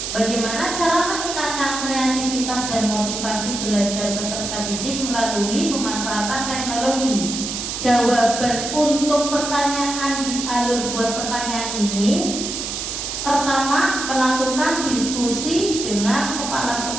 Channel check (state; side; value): noise; right; hiss, 4 dB below the sound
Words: bagaimana cara meningkatkan kreativitas dan motivasi belajar peserta didik melalui pemanfaatan teknologi? Jawaban untuk pertanyaan di alur buat pertanyaan ini, pertama, melakukan diskusi dengan kepala